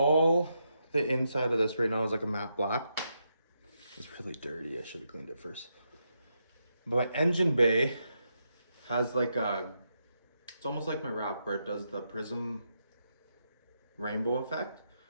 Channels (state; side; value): inverted; both; correlation -0.82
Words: the inside of this right now is like a matte black. It's really dirty. I should have cleaned it first. But my engine bay has like it's almost like my wrap where it does the prism rainbow effect,